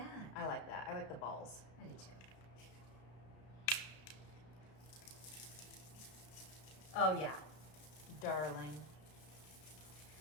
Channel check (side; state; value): right; late; 33 ms